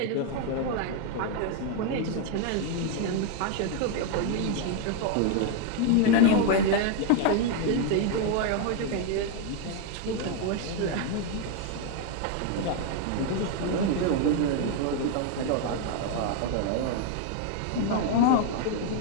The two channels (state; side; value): different; both; correlation 0.01